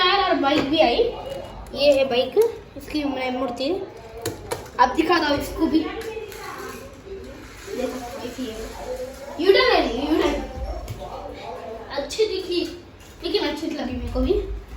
और बाइक भी आई। ये है बाइक, इसकी मैं मूर्ति अब दिखा दो इसको भी। देखो ऐसी है, यूटर्न है, यूटर्न अच्छी दिखी लेकिन अच्छी लगी मेरे को भी।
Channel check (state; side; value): identical; both; correlation 1.00